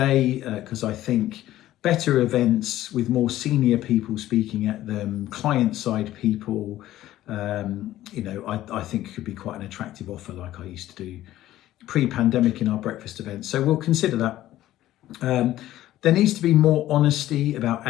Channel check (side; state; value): right; quieter; 14.3 dB